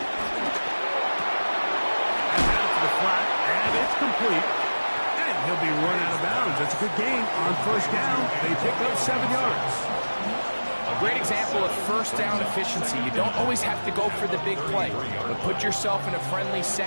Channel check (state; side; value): inverted; both; correlation -1.00